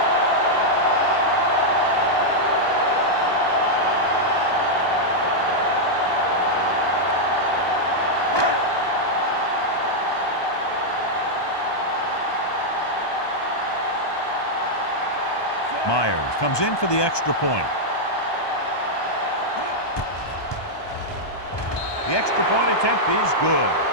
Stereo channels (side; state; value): right; late; 1.2 ms